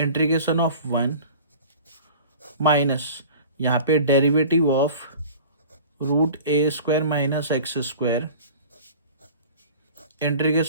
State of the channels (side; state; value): both; inverted; correlation -0.41